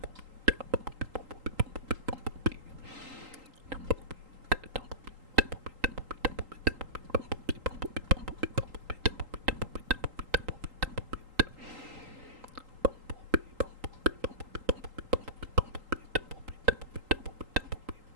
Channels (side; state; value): left; late; 3.8 ms